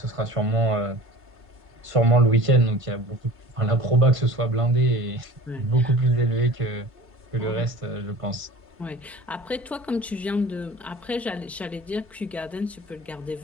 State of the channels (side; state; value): both; normal; correlation 0.41